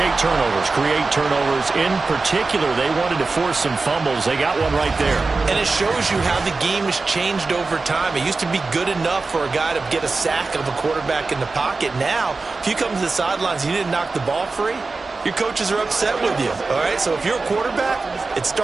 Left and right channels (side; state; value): left; quieter; 3.9 dB